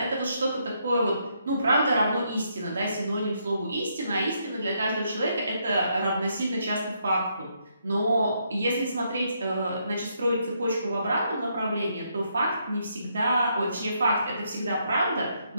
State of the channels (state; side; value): inverted; both; correlation -0.75